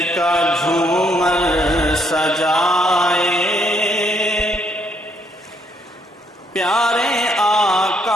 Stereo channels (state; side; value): normal; both; correlation 0.71